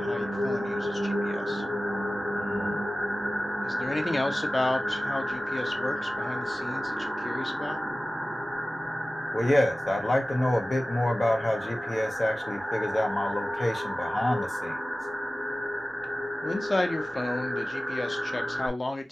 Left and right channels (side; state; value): both; normal; correlation 0.96